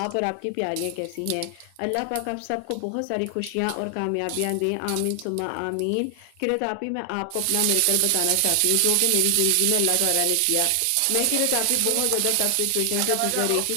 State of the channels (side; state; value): both; different; correlation 0.00